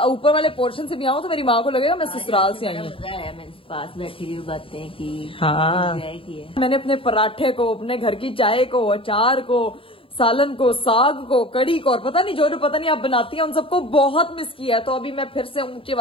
ऊपर वाले पोर्शन से भी आऊँ तो मेरी माँ को लगेगा मैं ससुराल से आई हूँ। पास बैठी हुई बातें की। हाँ, मैंने अपने पराठे को, अपने घर की चाय को, अचार को, सालन को, साग को, कड़ी को, और पता नहीं जो पता नहीं आप बनाती हैं, उन सबको बहुत मिस किया है। तो अभी मैं फिर से ऊंची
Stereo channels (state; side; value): late; right; 0.26 ms